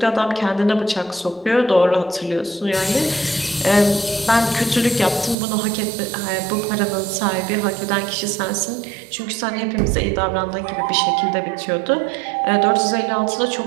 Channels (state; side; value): drops out; left; at 5.4 s